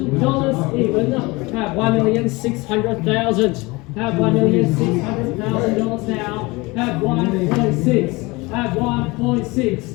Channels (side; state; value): right; quieter; 23.8 dB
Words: even. Have $1,600,000. Have $1,600,000 now. Have 1.6. Have 1.6.